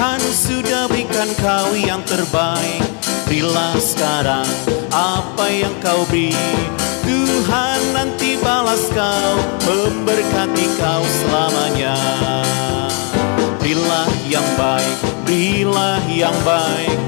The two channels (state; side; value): quieter; right; 37.2 dB